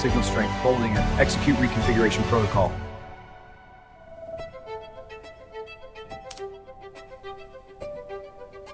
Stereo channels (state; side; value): identical; both; correlation 1.00